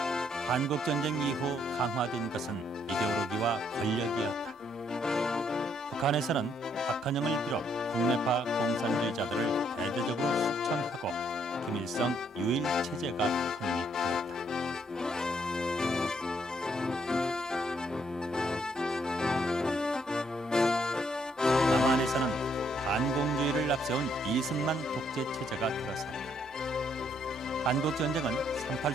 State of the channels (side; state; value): both; normal; correlation 0.71